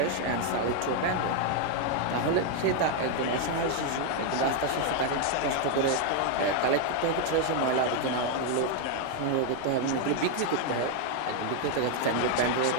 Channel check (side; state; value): both; different; correlation 0.01